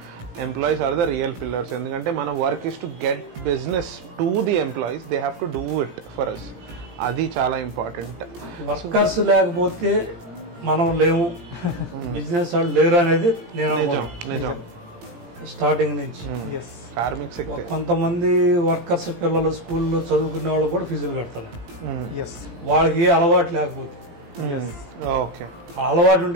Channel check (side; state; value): left; late; 17 ms